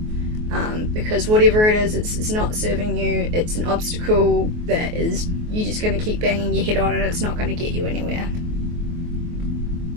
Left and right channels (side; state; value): left; late; 24 ms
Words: because whatever it is, it's not serving you. It's an obstacle that is you're just going to keep banging your head on, and it's not going to get you anywhere.